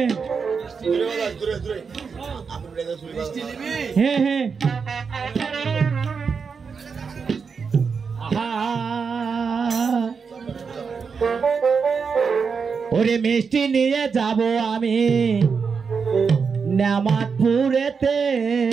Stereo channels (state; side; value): quieter; left; 5.6 dB